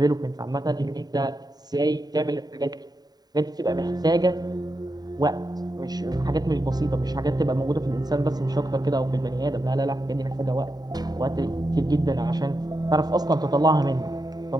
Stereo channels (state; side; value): late; left; 0.19 ms